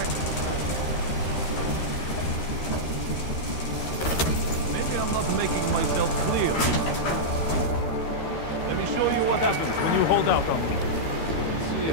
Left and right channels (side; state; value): right; late; 13 ms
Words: I'm not making myself clear. Let me show you what happens when you hold out on me. See